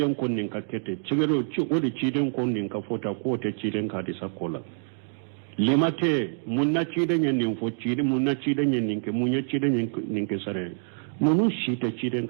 kunnin ka kete chugo di tiden kunnin ka foto ko te tiden ka hadisa kola limate munna tiden nin fo tiden munna tiden nin ke munya tiden nin ke sare nunu shita ciden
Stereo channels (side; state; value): left; silent; digital silence